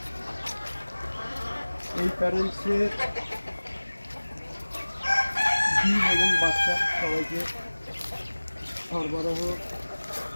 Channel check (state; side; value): inverted; both; correlation -1.00